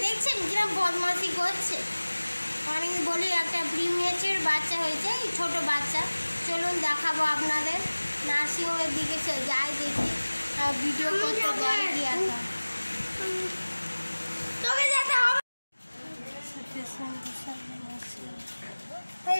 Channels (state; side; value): inverted; both; correlation -1.00